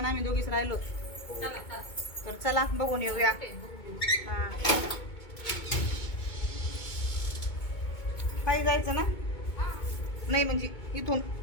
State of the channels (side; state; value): right; late; 2.2 ms